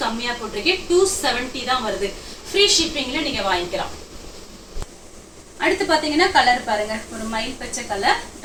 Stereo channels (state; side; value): identical; both; correlation 1.00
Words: கம்மியா போட்டிருக்கேன். 270 தான் வருது. ஃப்ரீ ஷிப்பிங்ல நீங்க வாங்கிக்கலாம். அடுத்து பாத்தீங்கன்னா கலர் பாருங்க, ஒரு மயில் பச்சை கலர்,